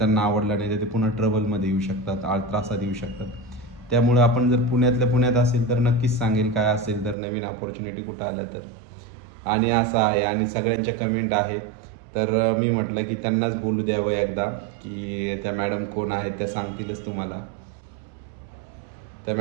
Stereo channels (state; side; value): drops out; left; at 7.2 s